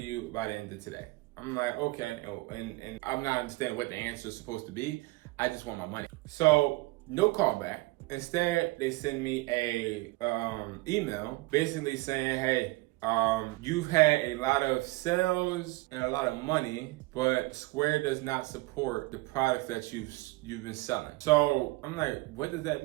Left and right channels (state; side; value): quieter; left; 22.3 dB